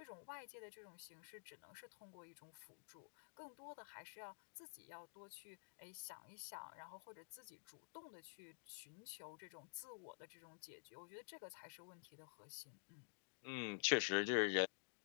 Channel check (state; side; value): silent; right; digital silence